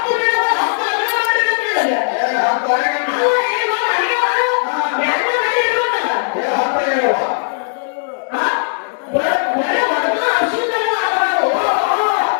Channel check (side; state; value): right; silent; digital silence